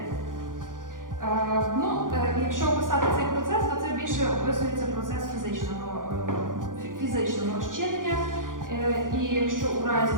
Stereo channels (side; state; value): left; late; 0.89 ms